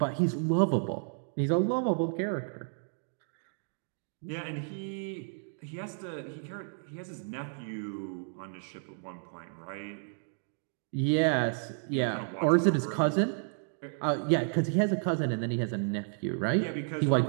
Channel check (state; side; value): silent; left; digital silence